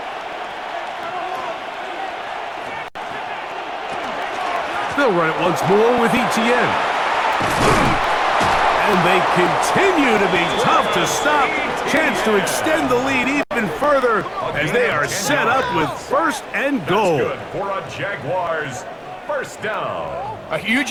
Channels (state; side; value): identical; both; correlation 1.00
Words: They'll run it once more with Etienne. And they continue to be tough to stop. Chance to extend the lead even further as they are set up with first and goal. That's good for a Jaguars first down. A